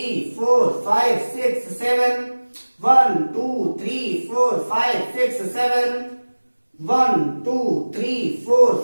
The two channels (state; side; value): inverted; both; correlation -1.00